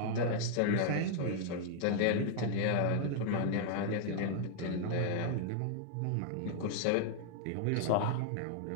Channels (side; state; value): both; different; correlation 0.00